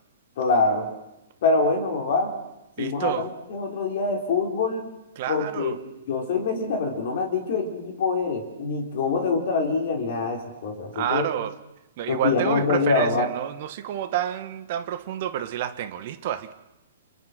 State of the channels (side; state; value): both; inverted; correlation -0.33